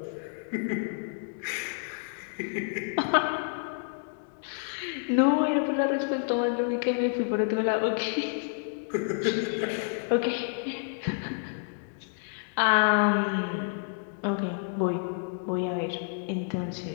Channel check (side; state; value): right; silent; 58 dB below the other